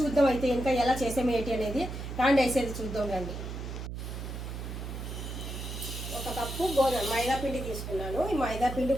అయితే ఇంకా ఎలా చేసాము ఏటి అనేది రాండి వేసేది చూద్దాం రండి. ఒక కప్పు మైదా పిండి తీసుకున్నాను. ఈ మైదా పిండి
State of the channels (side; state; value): right; noise; hum, 7 dB below the sound